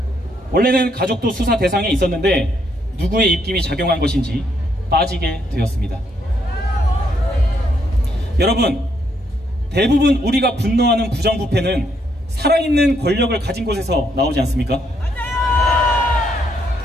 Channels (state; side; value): normal; both; correlation 0.74